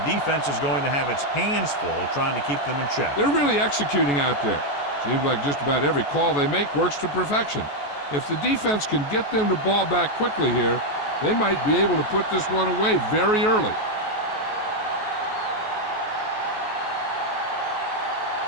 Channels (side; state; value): right; late; 14 ms